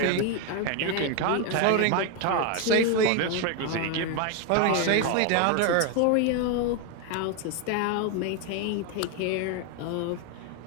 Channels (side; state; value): both; different; correlation 0.01